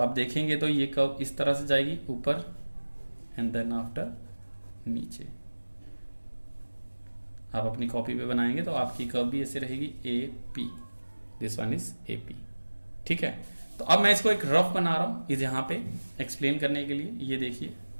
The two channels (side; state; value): both; inverted; correlation -1.00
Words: आप देखेंगे तो ये कर्व इस तरह से जाएगी ऊपर एंड देन आफ्टर नीचे। आप अपनी कॉपी पे बनाएंगे तो आपकी कर्व भी ऐसे रहेगी AP, this one is AP, ठीक है। तो अब मैं इसको एक रफ बना रहा हूं इस यहाँ पे एक्सप्लेन करने के लिए। ये देखिए